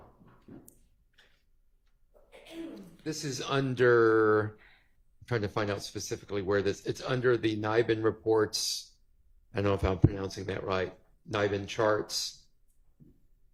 This is under, I'm trying to find out specifically where it's under the NIBIN reports. I don't know if I'm pronouncing that right. NIBIN charts.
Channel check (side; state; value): both; identical; correlation 1.00